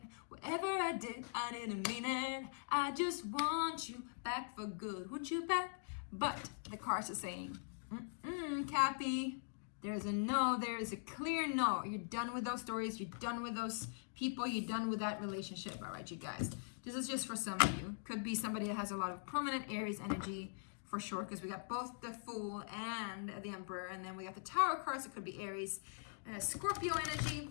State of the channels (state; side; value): silent; right; digital silence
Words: whatever I did, I didn't mean it. I just want you back for good. Want you back? But the cards are saying, Cappy, there's a no. There is a clear no. You're done with those stories. You're done with those people. You're done with that relationship. All right, you guys. This is just for some of you. Could be somebody that has a lot of prominent Aries energy for sure, because we got both the Fool and the Emperor, and then we got the Tower cards. It could be Aries, Scorpio energy,